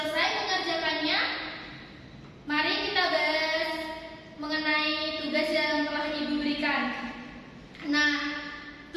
mengerjakannya? Mari kita bahas mengenai tugas yang telah Ibu berikan. Nah,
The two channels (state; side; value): identical; both; correlation 1.00